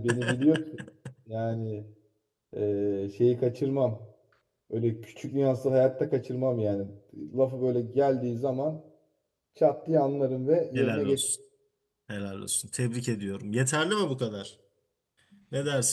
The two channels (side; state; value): both; identical; correlation 1.00